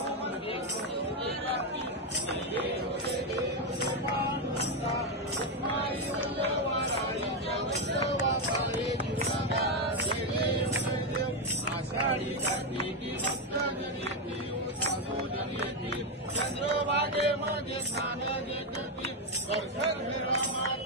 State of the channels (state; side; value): normal; both; correlation 0.05